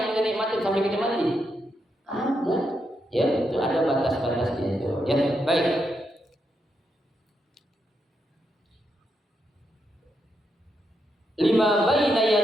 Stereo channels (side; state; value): both; normal; correlation 0.82